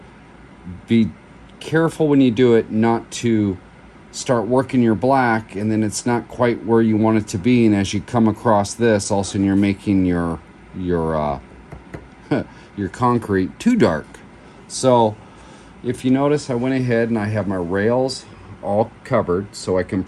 be careful when you do it not to start working your black and then it's not quite where you want it to be, and as you come across this, all of a sudden you're making your concrete too dark. So if you notice, I went ahead and I have my rails all covered so I can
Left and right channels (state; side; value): identical; both; correlation 1.00